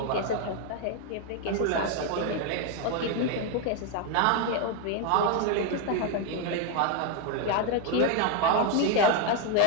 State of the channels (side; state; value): both; different; correlation 0.01